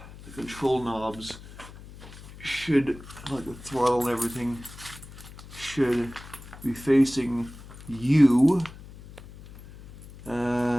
control knobs should, like the throttle and everything, should be facing you.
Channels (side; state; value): left; noise; hum, 17 dB below the sound